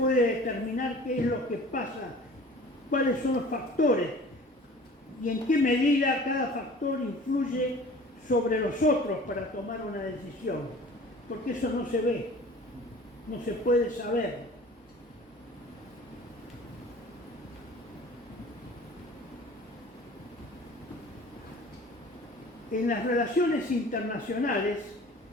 determinar qué es lo que pasa, cuáles son los factores y en qué medida cada factor influye sobre los otros para tomar una decisión, porque eso no se ve, no se puede saber. En las relaciones internacionales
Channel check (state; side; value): normal; both; correlation 0.45